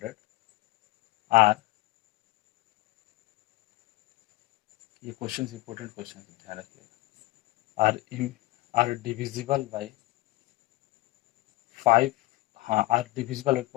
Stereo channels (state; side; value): quieter; right; 19.3 dB